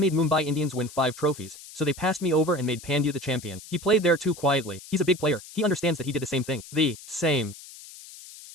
Mumbai Indians win 5 trophies, so they passed me over and made Pandya the champion. He played there too quietly. He's a big player. He understands that he did the same thing. The same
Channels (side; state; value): left; noise; hiss, 17 dB below the sound